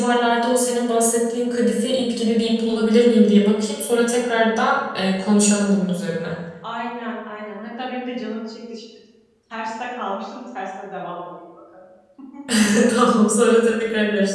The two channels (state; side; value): identical; both; correlation 1.00